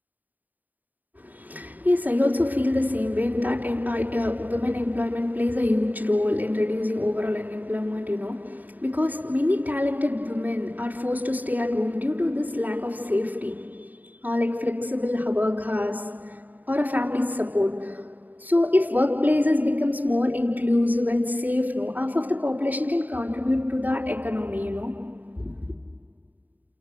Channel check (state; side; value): late; left; 0.083 ms